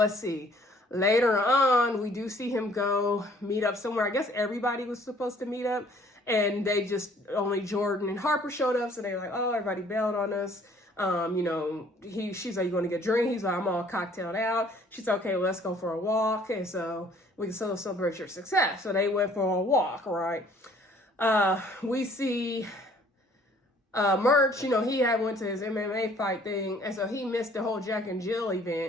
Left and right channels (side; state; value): both; normal; correlation 0.58